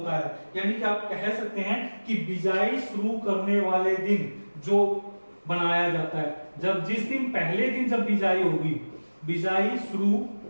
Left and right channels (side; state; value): both; inverted; correlation -1.00